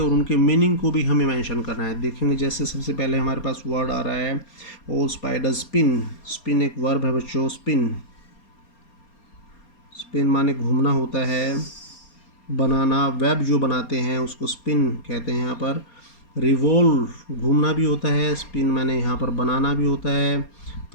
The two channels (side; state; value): right; late; 4.3 ms